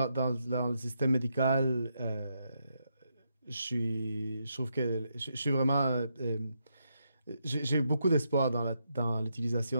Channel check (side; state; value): both; inverted; correlation -0.81